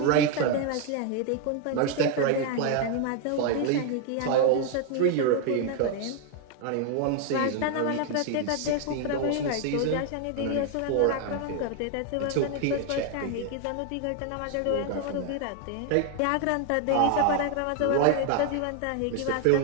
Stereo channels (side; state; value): both; different; correlation 0.00